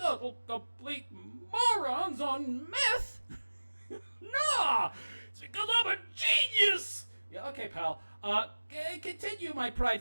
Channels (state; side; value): inverted; both; correlation -1.00